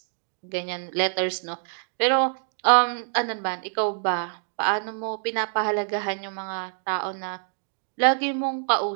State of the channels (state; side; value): silent; left; digital silence